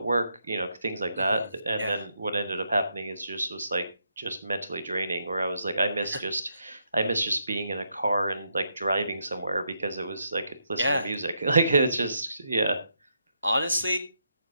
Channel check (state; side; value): inverted; both; correlation -0.80